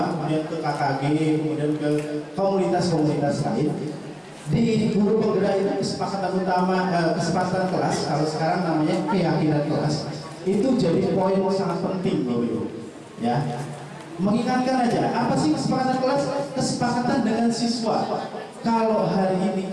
kemudian ke KKG, kemudian ke komunitas-komunitas lain. Di guru penggerak itu kesepakatan utama, kesepakatan kelas, kalau sekarang namanya keyakinan kelas, itu jadi poin sangat penting Bapak Ibu ya. Mengingatkan aja, apa sih kesepakatan kelas? Kesepakatan dengan siswa. Kalau hari ini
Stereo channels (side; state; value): both; identical; correlation 1.00